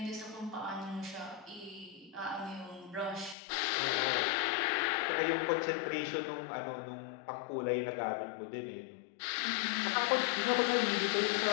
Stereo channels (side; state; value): right; drops out; at 3.4 s